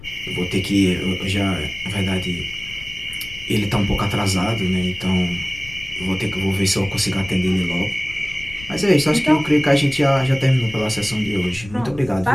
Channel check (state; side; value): noise; left; rumble, 17 dB below the sound